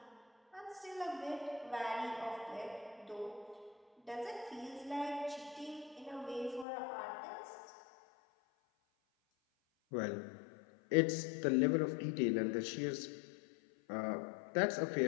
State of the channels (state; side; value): drops out; right; at 6.7 s